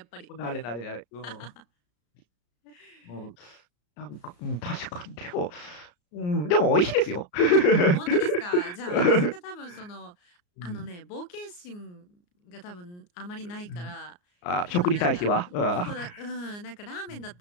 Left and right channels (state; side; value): late; right; 34 ms